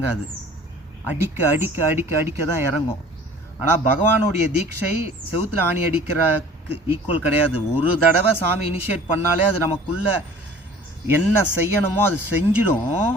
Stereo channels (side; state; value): both; normal; correlation 0.48